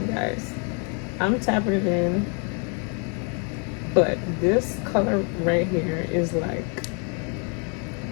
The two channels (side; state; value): right; quieter; 38.3 dB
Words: guys. I'm tapping it in, but this color right here is like